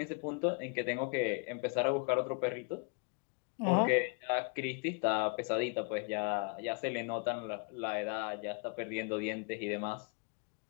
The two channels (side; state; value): right; quieter; 34.1 dB